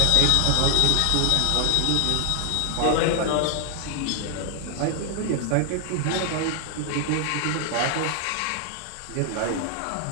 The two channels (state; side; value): different; both; correlation 0.00